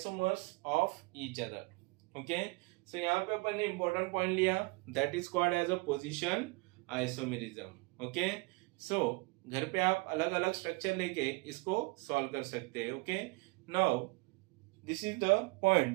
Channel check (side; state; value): left; quieter; 26.9 dB